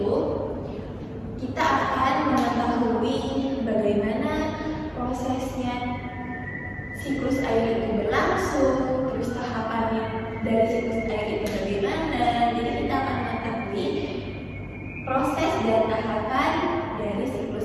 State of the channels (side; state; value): both; identical; correlation 1.00